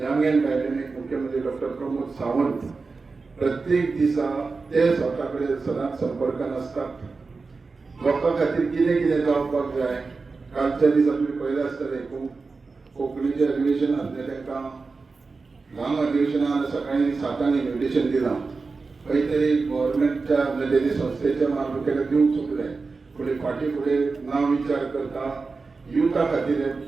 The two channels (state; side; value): quieter; left; 4.2 dB